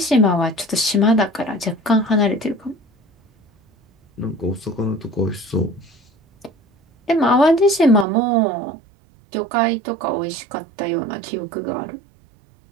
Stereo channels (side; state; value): left; drops out; at 8.1 s